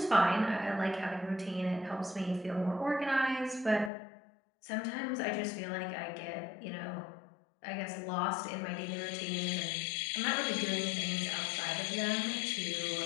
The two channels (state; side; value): drops out; right; at 3.9 s